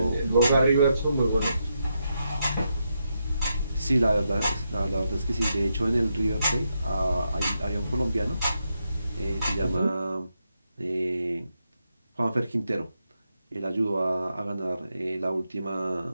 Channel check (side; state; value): both; inverted; correlation -0.83